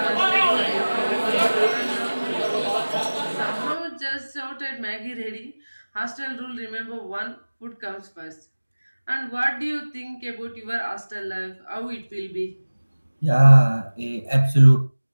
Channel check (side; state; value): both; inverted; correlation -1.00